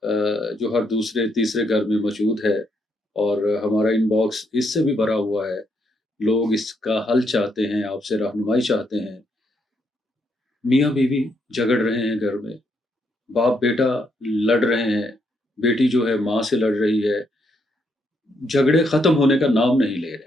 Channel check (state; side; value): normal; both; correlation 0.76